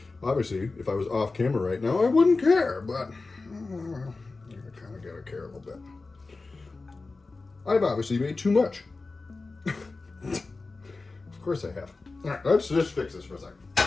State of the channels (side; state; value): right; quieter; 3.7 dB